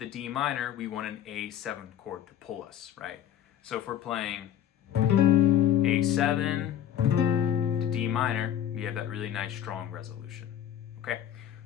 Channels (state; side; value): quieter; right; 10.4 dB